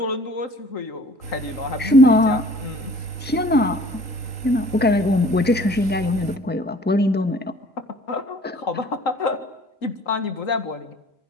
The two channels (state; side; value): normal; both; correlation 0.51